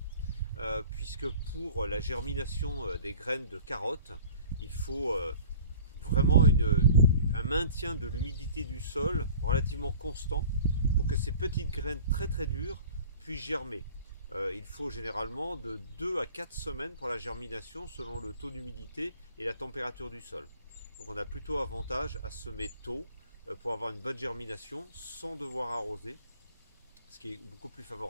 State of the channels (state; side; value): inverted; both; correlation -0.46